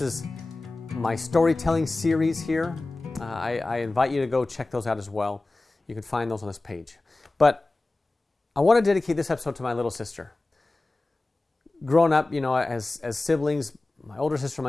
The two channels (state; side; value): quieter; right; 3.0 dB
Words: is my storytelling series here. I invite you to go check those out as well. You can find those on this page. But I want to dedicate this episode to my little sister. Growing up, as siblings, my older sister,